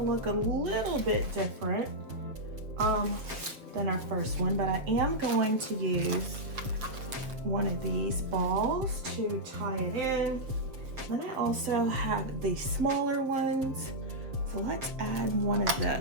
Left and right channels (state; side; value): late; left; 7.4 ms